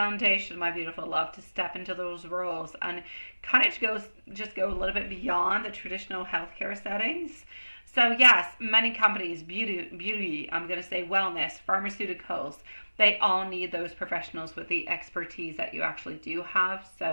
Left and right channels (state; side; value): inverted; both; correlation -1.00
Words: my beautiful love, to step into those roles and kind of just go a little bit beyond the traditional healthcare settings. So yes, many companies, beauty, I'm going to say wellness, pharmaceuticals, they all need those professionals with the expertise that you actually do have.